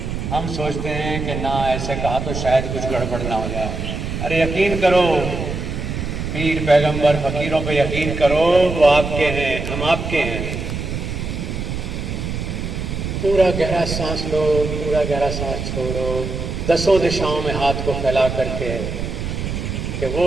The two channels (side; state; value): right; noise; rumble, 4 dB below the sound